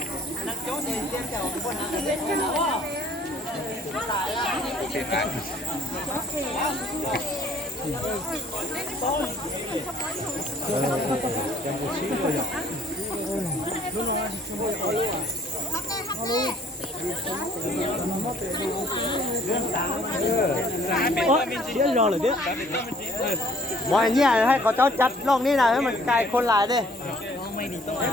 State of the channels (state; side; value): normal; both; correlation 0.58